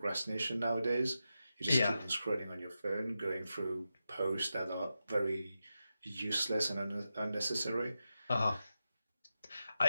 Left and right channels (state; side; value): inverted; both; correlation -0.90